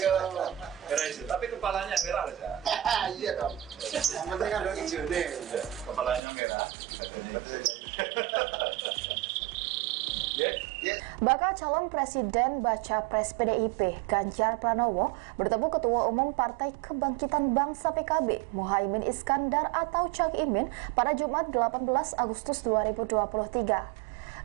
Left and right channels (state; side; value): drops out; left; at 6.2 s